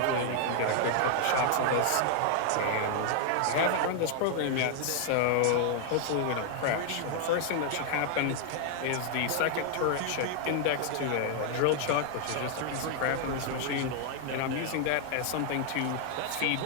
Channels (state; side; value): different; both; correlation 0.00